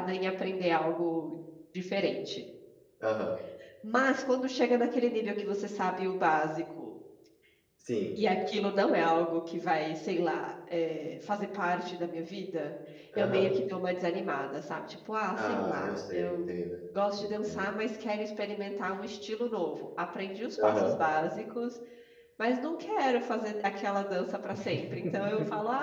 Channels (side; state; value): both; identical; correlation 1.00